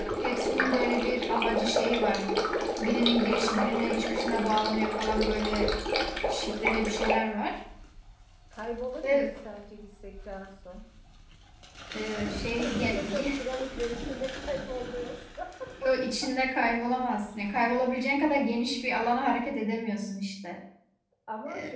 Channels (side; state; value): both; identical; correlation 1.00